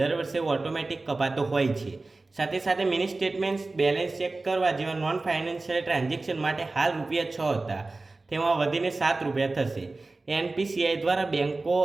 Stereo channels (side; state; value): left; quieter; 3.3 dB